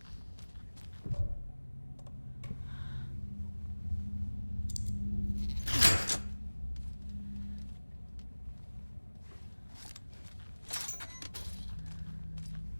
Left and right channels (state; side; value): inverted; both; correlation -1.00